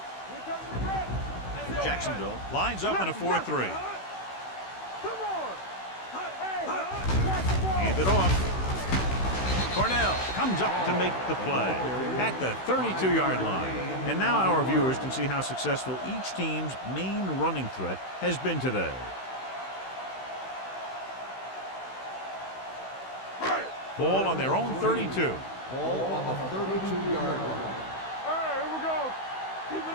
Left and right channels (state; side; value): late; right; 16 ms